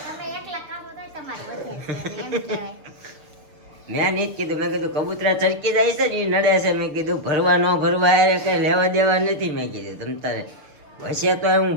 મેં નહીં કીધું, મેં કીધું કબૂતરા ચડકી જાય છે ને એ નડે છે. મેં કીધું ભરવા ન ભરવા અરે કઈ લેવા દેવા નથી. મેં કીધું તમ તારે હશે તો હું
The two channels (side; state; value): left; late; 6.8 ms